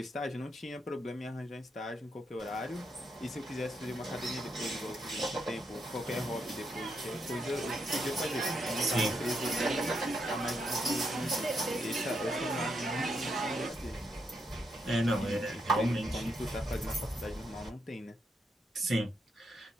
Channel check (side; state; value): both; normal; correlation 0.80